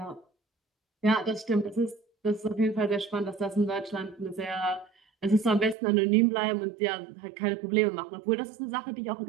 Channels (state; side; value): drops out; left; at 5.8 s